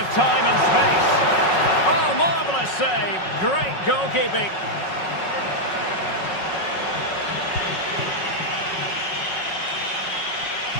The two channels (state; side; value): late; right; 5.4 ms